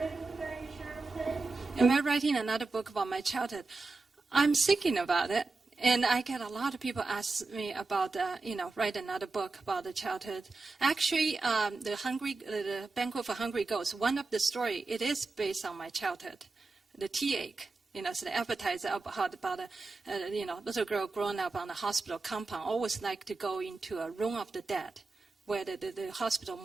book about your childhood? Am I writing another book about my childhood? I'm thinking about it. And I get a lot of people ask me about, write another book about the childhood. Actually, the Banquet for Hungry Ghosts, one of the story, it is based on my childhood, the tea ache. So the appetizer about a little girl growing up on a hospital compound, always like to go into a room of the dead, where the hospital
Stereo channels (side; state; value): left; quieter; 3.7 dB